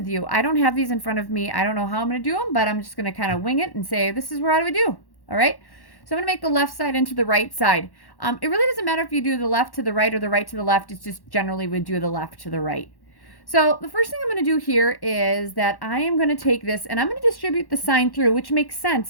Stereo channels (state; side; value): late; right; 1.1 ms